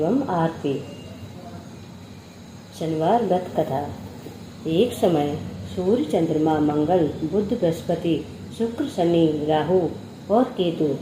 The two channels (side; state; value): both; identical; correlation 1.00